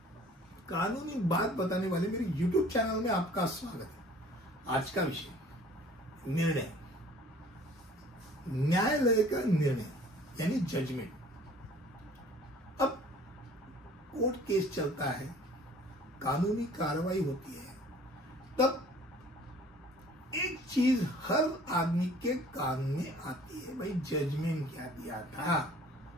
कानूनी बात बताने वाले मेरे YouTube चैनल में आपका स्वागत है। आज का विषय निर्णय, न्यायालय का निर्णय यानी जजमेंट। अब कोर्ट केस चलता है, कानूनी कार्रवाई होती है, तब एक चीज हर आदमी के कान में आती है, भाई जजमेंट क्या दिया था,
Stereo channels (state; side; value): normal; both; correlation 0.51